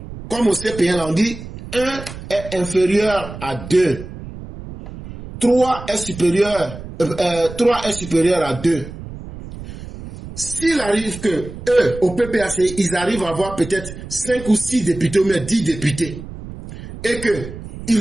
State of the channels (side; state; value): right; noise; rumble, 12 dB below the sound